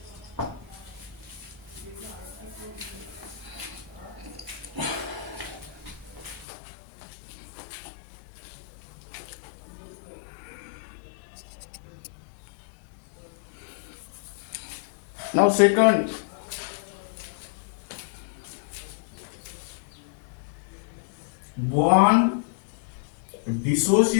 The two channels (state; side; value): drops out; right; at 6.5 s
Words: Now second, bond